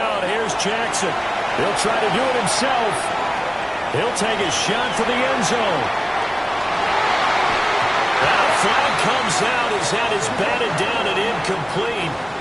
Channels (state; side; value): identical; both; correlation 1.00